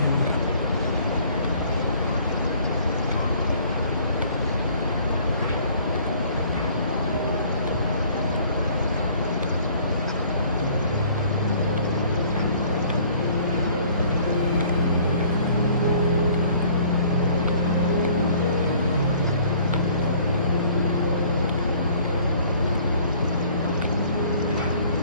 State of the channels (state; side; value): inverted; both; correlation -0.55